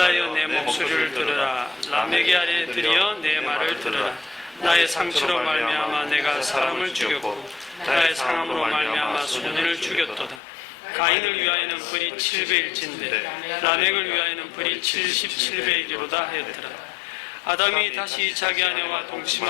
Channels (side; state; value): right; drops out; at 10.4 s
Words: 내 목소리를 들으라. 라멕이 아래들이여 내 말을 들으라. 나의 상처로 말미암아 내가 사람을 죽였고 나의 상함으로 말미암아 소년을 죽였도다. 가인을 위하여는 벌이 700일진데 라멕을 위하여는 벌이 77배이기로다 하였더라. 아담이 다시 자기 아내와